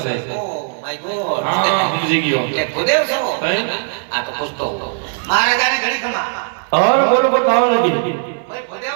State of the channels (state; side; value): silent; left; 58 dB below the other